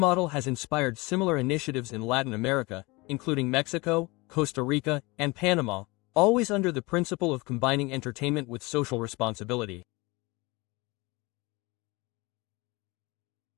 has inspired similar initiatives in Latin America, including Mexico, Costa Rica, and Panama, always under the principle of combining entertainment with social responsibility.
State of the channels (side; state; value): right; quieter; 24.4 dB